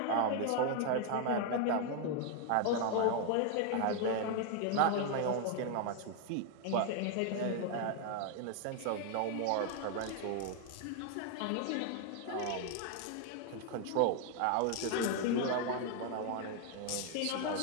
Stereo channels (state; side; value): different; both; correlation 0.00